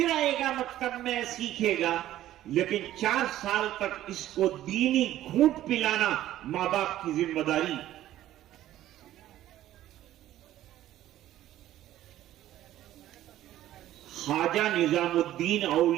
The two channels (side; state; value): left; quieter; 13.5 dB